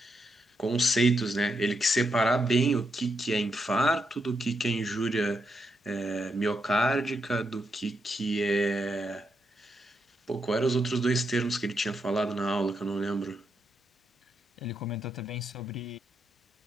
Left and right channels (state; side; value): normal; both; correlation 0.82